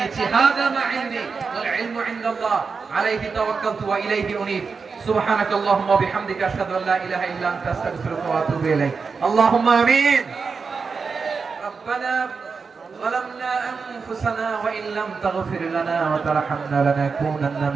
নিচ্ছি। হাযা মা ইনদি ওয়াল ইলমু ইনদাল্লাহ আলাইহি তাওয়াক্কালতু ওয়া ইলাইহি উনীব। সুবহানাকাল্লাহুম্মা ওয়া বিহামদিকা আশহাদু আল্লা ইলাহা ইল্লা আনতা আস্তাগফিরুকা ওয়া আতুবু ইলাইক। আল্লাহুম্মা আমিন। রব্বানা ظلمنا أنفسنا وإن لم تغفر لنا وترحمنا لنكونن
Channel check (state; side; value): quieter; left; 5.1 dB